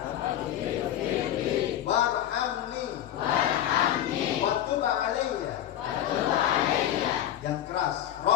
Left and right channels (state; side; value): quieter; right; 11.7 dB